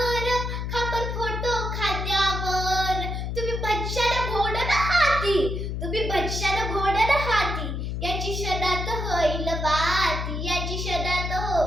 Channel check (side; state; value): left; noise; hum, 3 dB below the sound